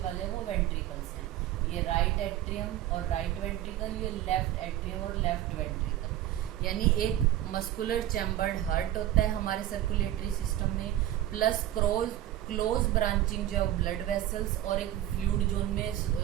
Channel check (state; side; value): quieter; left; 13.1 dB